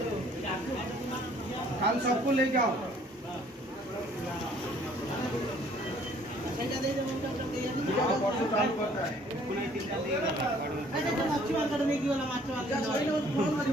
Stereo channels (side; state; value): both; normal; correlation 0.59